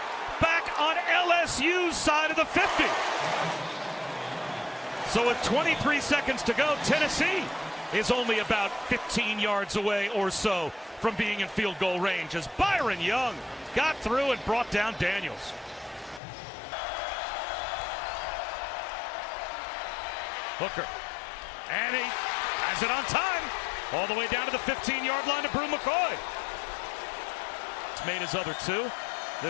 Back on LSU's side of the 50. So with 23 seconds to go, Tennessee is only about 15 yards away or so from being in field goal range as Byron Young got through and brought down Daniels. Hooker, and he has it on time, all the way down to the 15-yard line to Brew McCoy. It's made his other 2,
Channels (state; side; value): drops out; right; at 16.2 s